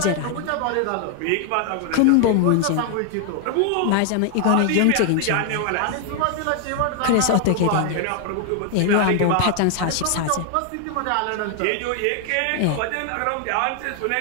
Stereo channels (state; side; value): different; both; correlation 0.00